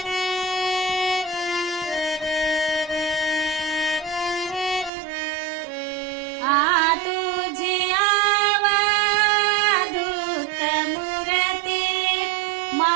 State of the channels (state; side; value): drops out; left; at 4.9 s